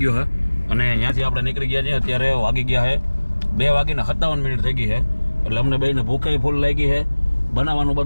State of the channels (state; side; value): inverted; both; correlation -1.00